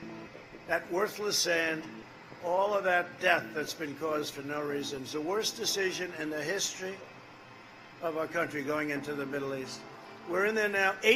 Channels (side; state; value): both; identical; correlation 1.00